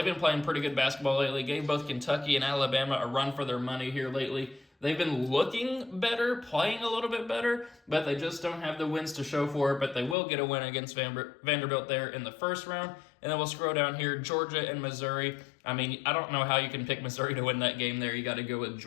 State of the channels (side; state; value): right; drops out; at 10.2 s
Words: been playing pretty good basketball lately. Gave both Kentucky and Alabama a run for their money here lately. They've been looking better, playing a little bit better, but they just don't have the wins to show for it. But they will get a win against Vanderbilt there in the first round. And then we'll scroll down here, Georgia and Missouri. I mean, I don't know how you can pick Missouri to win that game there. You got to go with